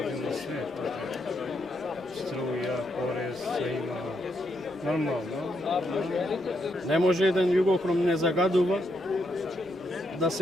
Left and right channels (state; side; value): normal; both; correlation 0.78